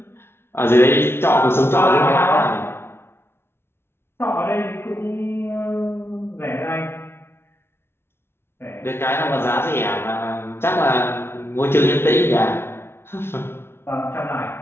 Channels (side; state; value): right; late; 0.12 ms